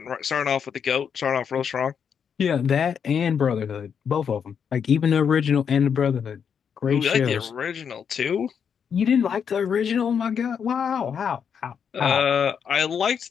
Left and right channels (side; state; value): right; quieter; 7.3 dB